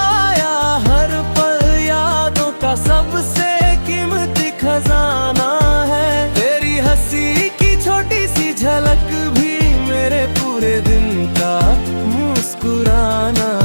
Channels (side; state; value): both; inverted; correlation -1.00